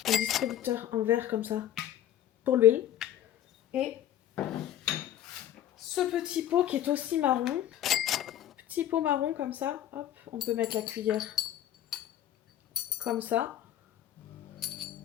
Un distributeur en verre comme ça pour l'huile. Et ce petit pot qui est aussi marron. Petit pot marron comme ça. Hop, on peut mettre la cuillère comme ça.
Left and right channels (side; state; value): right; quieter; 11.7 dB